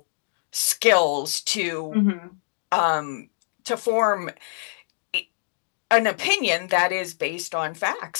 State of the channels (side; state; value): right; silent; digital silence